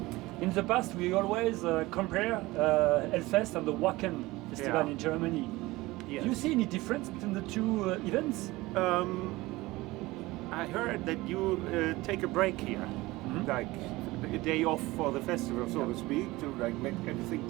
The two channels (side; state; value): left; quieter; 20.1 dB